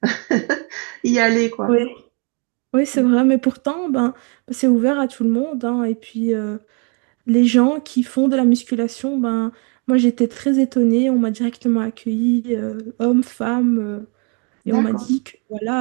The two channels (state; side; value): quieter; left; 35.0 dB